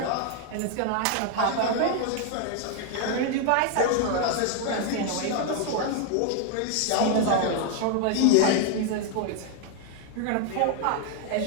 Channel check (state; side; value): different; both; correlation 0.00